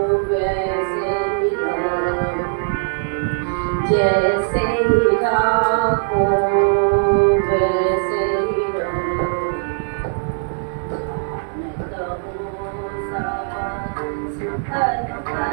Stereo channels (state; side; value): silent; left; 66 dB below the other